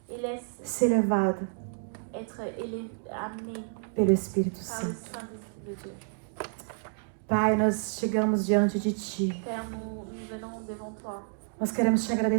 Et laisse ser levado être amené pelo Espírito par le Santo. Saint-Esprit de Dieu. Pai, nós chegamos diante de Ti. Père, nous venons devant toi. Nós queremos te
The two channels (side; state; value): left; silent; 58 dB below the other